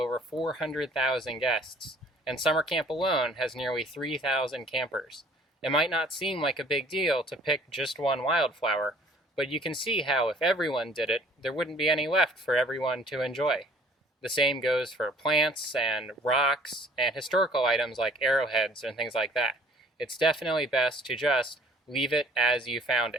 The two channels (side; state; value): both; normal; correlation 0.55